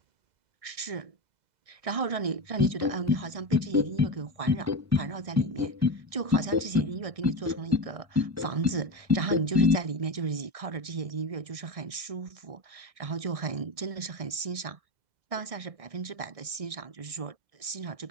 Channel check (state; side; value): late; left; 1.6 ms